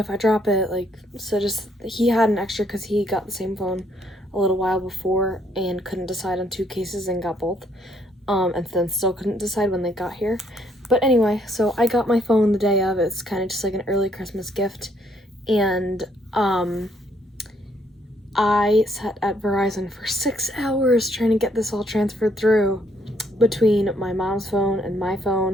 I drop it, like, so just, he had an extra because he got the same phone a little while before and couldn't decide on 2 cases and got both, and then still couldn't decide when they got here. But anyway, so I got my phone the day of. It's kind of just like an early Christmas gift. And I sat at Verizon for 6 hours trying to get this all transferred through between my mom's phone and my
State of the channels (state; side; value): normal; both; correlation 0.69